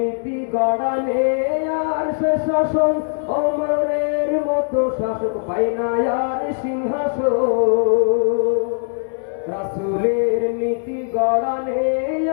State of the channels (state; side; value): silent; right; 66 dB below the other